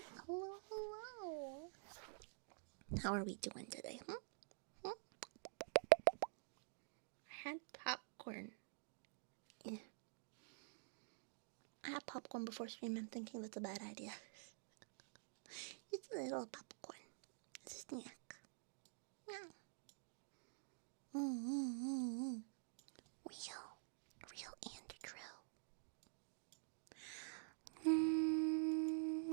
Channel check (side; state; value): left; silent; digital silence